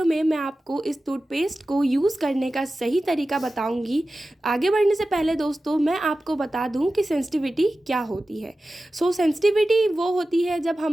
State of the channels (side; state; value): both; normal; correlation 0.95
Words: में मैं आपको इस टूथपेस्ट को यूज़ करने का सही तरीका बताऊंगी। आगे बढ़ने से पहले दोस्तों मैं आपको बता दूं कि सेंसिटिविटी क्या होती है। सेंसिटिविटी वो होती है जब